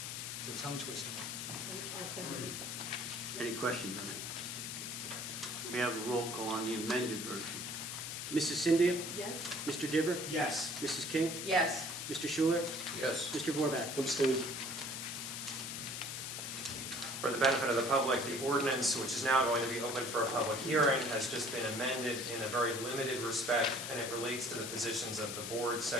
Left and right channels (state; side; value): noise; left; hiss, 5 dB below the sound